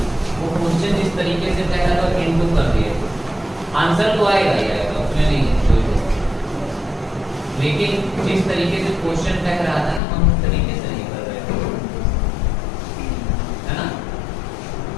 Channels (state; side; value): drops out; right; at 10.0 s